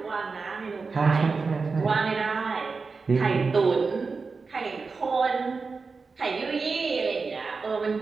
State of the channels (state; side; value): quieter; left; 4.5 dB